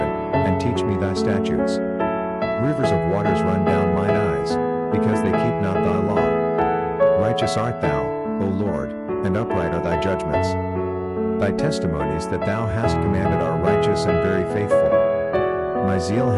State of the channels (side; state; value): both; identical; correlation 1.00